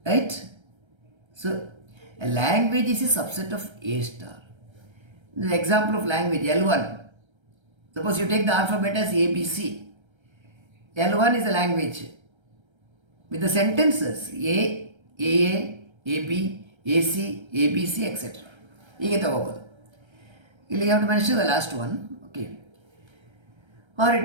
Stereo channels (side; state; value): left; late; 1.3 ms